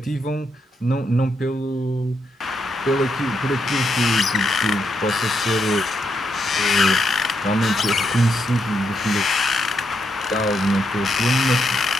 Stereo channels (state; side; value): normal; both; correlation 0.80